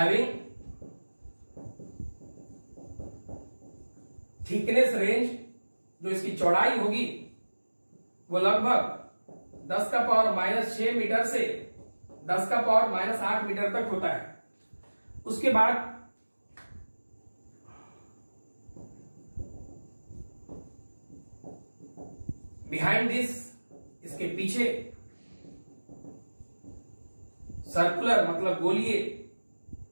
थिकनेस रेंज, जो इसकी चौड़ाई होगी वो लगभग 10 का पावर -6 मीटर से 10 का पावर -8 मीटर तक होता है। उसके बाद बिहाइंड दिस, इसके पीछे सर्कुलर मतलब गोलीय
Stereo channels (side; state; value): both; inverted; correlation -1.00